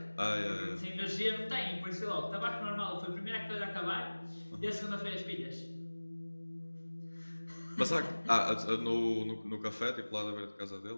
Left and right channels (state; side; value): inverted; both; correlation -1.00